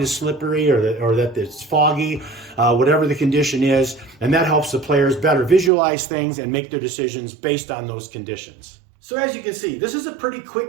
is slippery or that it's foggy, whatever the condition is, and that helps the players better visualize things and make their decisions based on those conditions. So as you can see, this is a pretty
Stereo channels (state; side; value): drops out; left; at 5.7 s